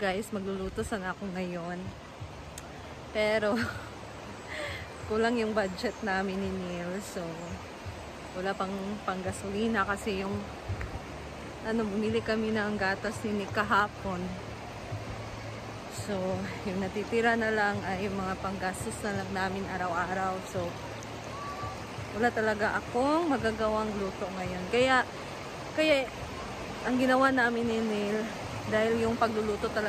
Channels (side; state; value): both; identical; correlation 1.00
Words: magluluto sana ako ngayon. Pero, kulang yung budget namin ni Neil. So, wala pang gasolina kasi yung bumili kami ng gatas ni Nick kahapon. So, yung natitira na lang ay yung mga panggastos na lang namin araw-araw. So, wala talaga akong magagawang luto ngayon. Kaya ang ginawa namin ni Neil, dahil yung pagluluto